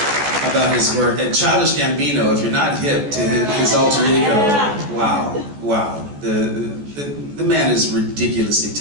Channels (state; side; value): late; left; 14 ms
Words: about his work. And Childish Gambino, if you're not hip to his alter ego, wow. The man is ridiculously